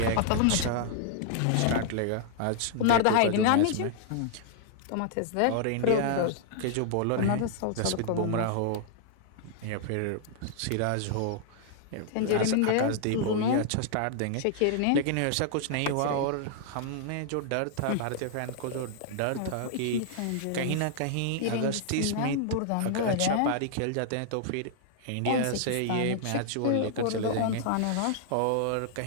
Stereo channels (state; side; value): different; both; correlation -0.01